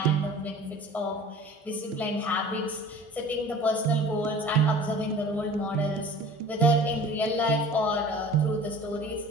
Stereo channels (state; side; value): normal; both; correlation 0.43